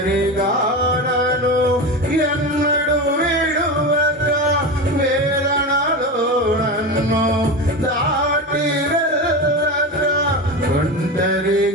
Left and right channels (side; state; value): both; normal; correlation 0.23